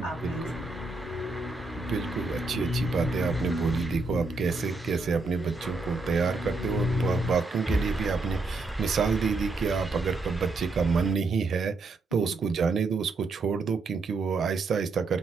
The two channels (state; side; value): quieter; left; 3.6 dB